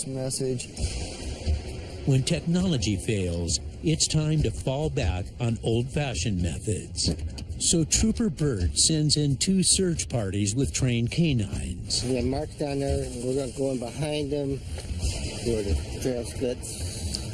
message. When technology fails, it's time to fall back on old-fashioned methods. So Trooper Bird sends in 2 search parties with trained canines. We have marks down there, and we're going to go in behind them where the trail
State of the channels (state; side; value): identical; both; correlation 1.00